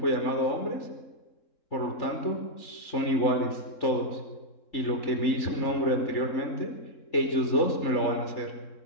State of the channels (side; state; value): right; late; 3.4 ms